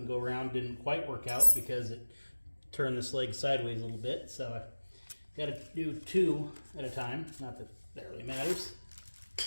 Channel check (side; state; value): both; inverted; correlation -1.00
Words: go around didn't quite work out because it turned this leg sideways a little bit, so I got to do 2 at a time. Not that that really matters.